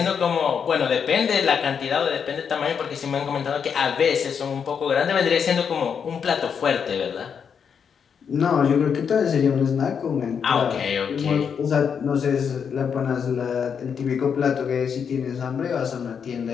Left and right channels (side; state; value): right; quieter; 7.0 dB